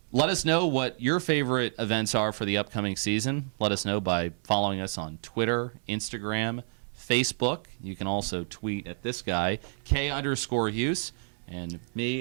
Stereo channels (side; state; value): left; silent; digital silence